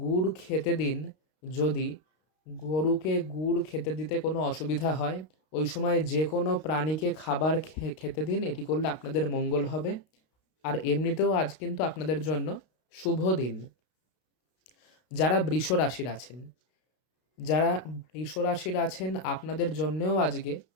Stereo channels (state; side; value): late; right; 32 ms